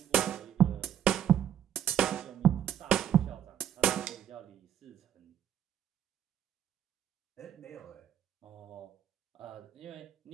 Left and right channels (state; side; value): quieter; left; 9.9 dB